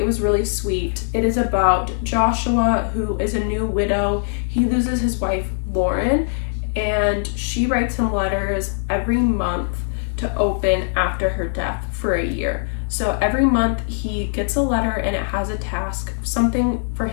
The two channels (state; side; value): silent; right; 65 dB below the other